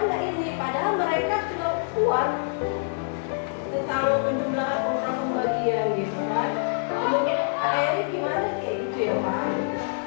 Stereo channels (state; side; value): silent; right; 61 dB below the other